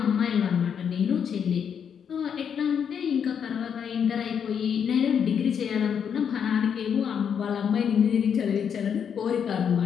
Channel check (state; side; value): quieter; right; 7.6 dB